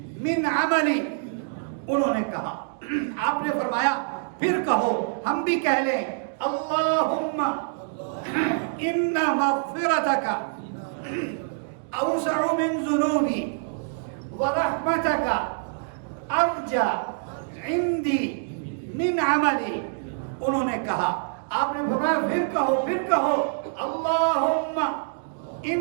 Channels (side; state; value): left; silent; digital silence